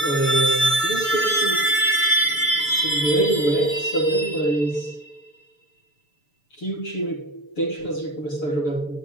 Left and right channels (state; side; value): late; right; 6.8 ms